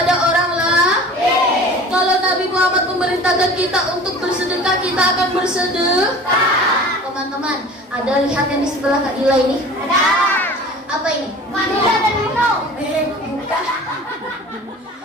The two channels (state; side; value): normal; both; correlation 0.42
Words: orang lain. Kalau Nabi Muhammad memerintahkan kita untuk bersedekah, kita akan bersedekah. Teman-teman, ada lihat yang di sebelah Kak Dila ini? Ada. Apa ini? Vanilla dan Milo. Bukan.